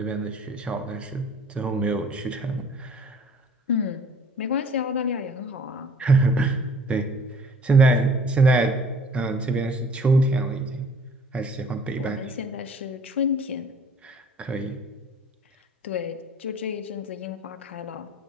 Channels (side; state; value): both; normal; correlation 0.52